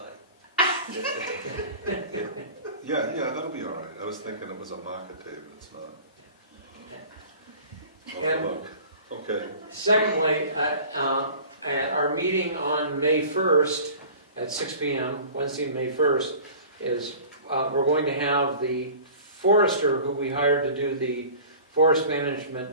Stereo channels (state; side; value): inverted; both; correlation -0.42